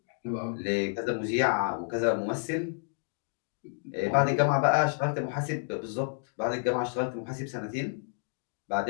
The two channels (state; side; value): silent; right; digital silence